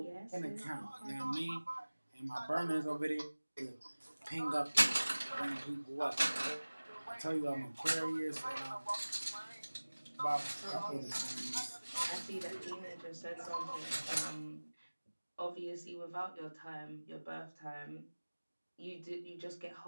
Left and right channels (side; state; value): both; inverted; correlation -1.00